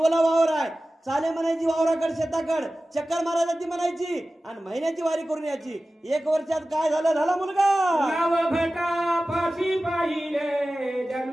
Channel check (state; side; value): normal; both; correlation 0.96